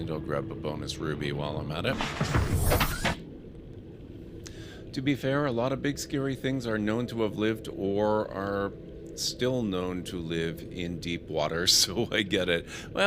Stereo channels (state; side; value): identical; both; correlation 1.00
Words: I'll grab a bonus ruby while I'm at it. To be fair, a lot of big scary things are known to have lived or are still known to live in deep water, so I get it.